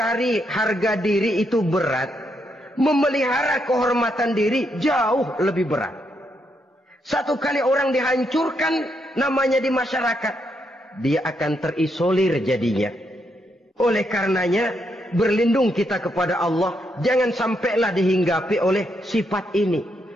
harga diri itu berat. Memelihara kehormatan diri jauh lebih berat. Satu kali orang dihancurkan namanya di masyarakat, dia akan terisolir jadinya. Oleh karenanya, berlindung kita kepada Allah. Jangan sampailah dihinggapi oleh sifat ini.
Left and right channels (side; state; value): both; normal; correlation 0.78